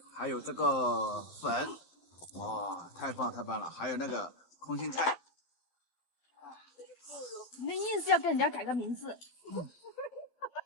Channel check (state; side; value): late; right; 11 ms